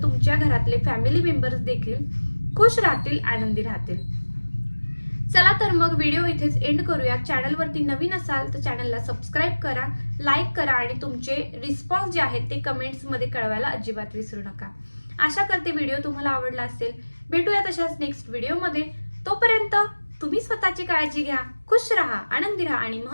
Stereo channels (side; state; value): both; inverted; correlation -1.00